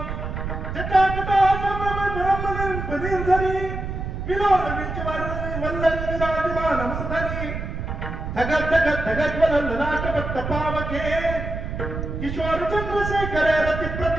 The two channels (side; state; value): right; noise; rumble, 5 dB below the sound